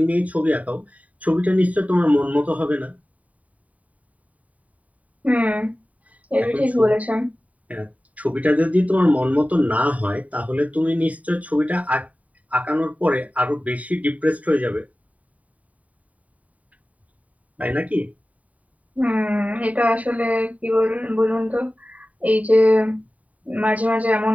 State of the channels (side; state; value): left; late; 0.070 ms